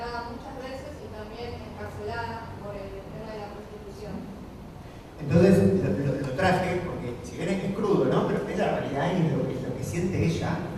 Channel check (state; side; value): identical; both; correlation 1.00